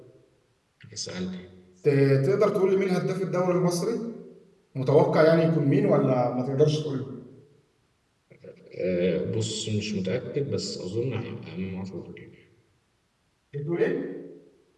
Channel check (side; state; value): both; identical; correlation 1.00